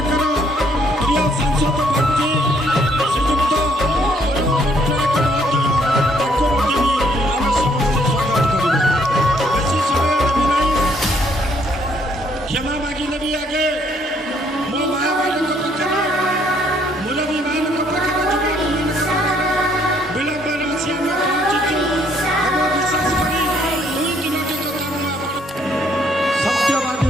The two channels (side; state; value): both; normal; correlation 0.67